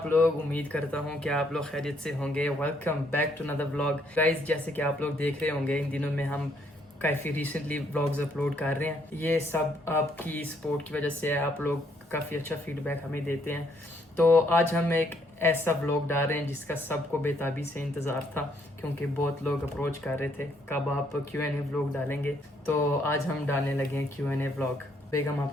لوگ؟ امید کرتا ہوں کہ آپ لوگ خیریت سے ہوں گے. Welcome back to another vlog. Guys جیسے کہ آپ لوگ دیکھ رہے ہوں گے ان دنوں میں ہم کافی ریسنٹلی vlogs اپلوڈ کر رہے ہیں. یہ سب آپ کی سپورٹ کی وجہ سے ہے. آپ لوگ کافی اچھا فیڈ بیک ہمیں دیتے ہیں. تو آج ہم ایک ایسا vlog ڈال رہے ہیں جس کا سب کو بے تابی سے انتظار تھا، کیونکہ بہت لوگ اپروچ کر رہے تھے کب آپ Q&A vlog ڈالیں گے. تو آج ہم ڈالنے لگے ہیں Q&A vlog. بیگم آپ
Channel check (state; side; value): normal; both; correlation 0.70